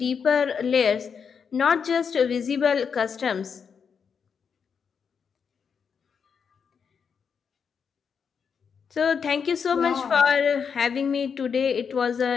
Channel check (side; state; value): right; quieter; 6.5 dB